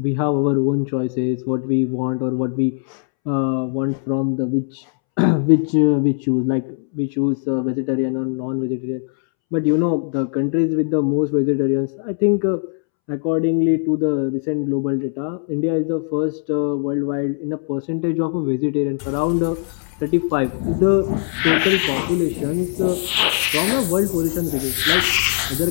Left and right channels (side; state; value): right; silent; 66 dB below the other